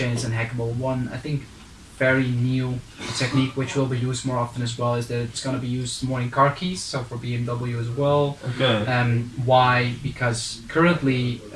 is unhackable. One, I think, very new technique which will be used more often as well is that it's going to be used more in car keys, so for BMW as well. Okay. Why? Because currently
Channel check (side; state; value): both; identical; correlation 1.00